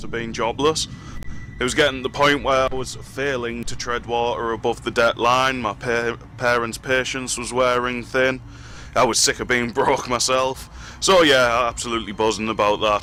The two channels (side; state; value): both; identical; correlation 1.00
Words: of being jobless. It was getting to the point where I was failing to tread water above the deadline. My parents' patience was wearing thin. I was sick of being broke myself. So yeah, absolutely buzzing about